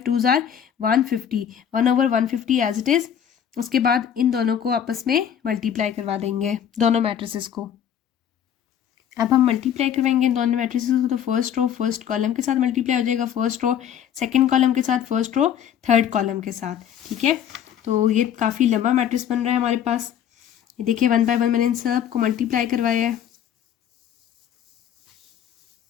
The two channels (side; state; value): right; quieter; 9.3 dB